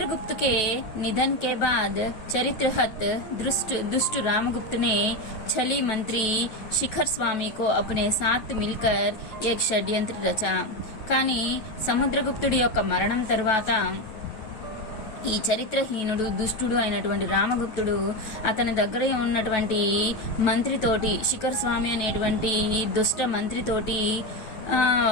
के निधन के बाद चरित्रहत दुष्ट रामगुप्त ने छली मंत्री शिखर स्वामी को अपने साथ मिलकर एक षड्यंत्र रचा. కానీ సముద్రగుప్తుడి యొక్క మరణం తర్వాత ఈ చరిత్రహీనుడు దుష్టుడు అయినటువంటి రామగుప్తుడు అతని దగ్గర ఉన్నటువంటి మంత్రితోటి, శిఖర్ స్వామి అనేటువంటి దుష్ట మంత్రితోటి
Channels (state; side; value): late; right; 9.2 ms